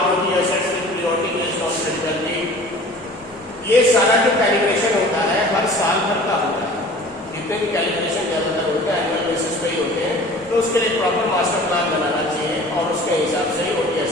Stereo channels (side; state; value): both; normal; correlation 0.44